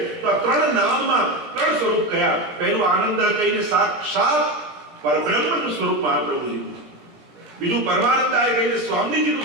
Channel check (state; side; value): late; left; 17 ms